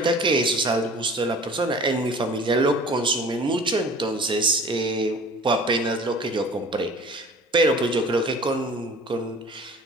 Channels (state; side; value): normal; both; correlation 0.45